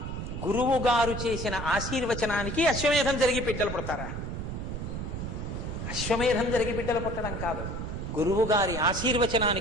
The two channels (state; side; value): noise; right; rumble, 5 dB below the sound